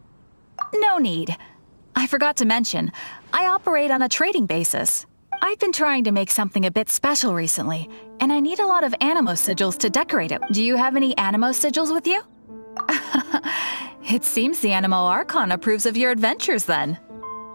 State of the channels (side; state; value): both; inverted; correlation -1.00